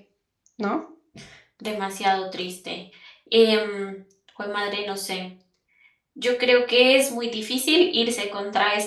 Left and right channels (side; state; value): both; identical; correlation 1.00